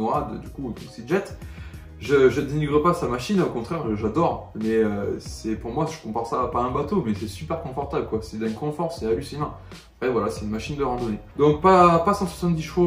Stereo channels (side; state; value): both; identical; correlation 1.00